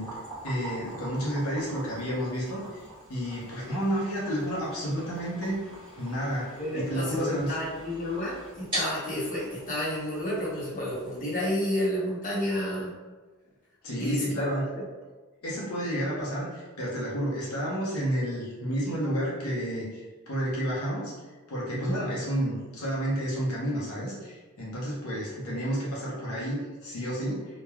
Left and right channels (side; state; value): both; normal; correlation 0.51